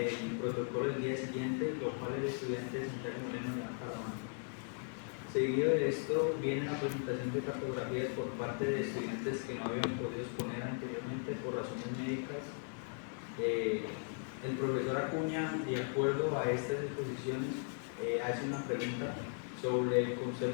protocolo del día siguiente, lo cual el estudiante Santiago Moreno le da para la mano. Seguido de esto viene la presentación de cartografías por parte de estudiantes que no habían podido exponer anteriormente por razones médicas. El profesor Acuña, de acuerdo a estas exposiciones, hace una pregunta sobre el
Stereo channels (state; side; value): silent; right; 53 dB below the other